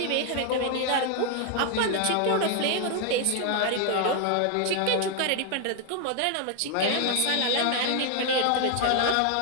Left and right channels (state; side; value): different; both; correlation 0.01